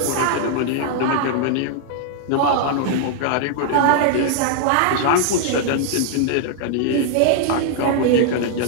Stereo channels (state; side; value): different; both; correlation 0.00